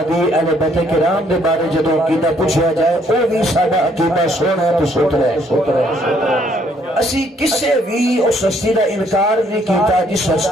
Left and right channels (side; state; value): both; normal; correlation 0.66